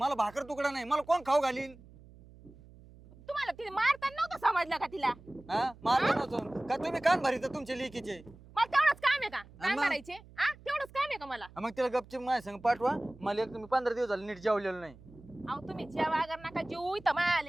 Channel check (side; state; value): right; noise; hum, 22 dB below the sound